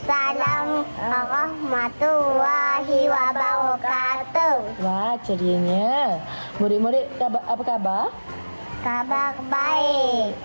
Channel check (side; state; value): both; inverted; correlation -1.00